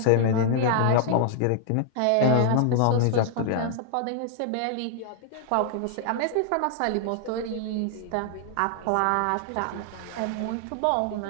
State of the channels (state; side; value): different; both; correlation -0.01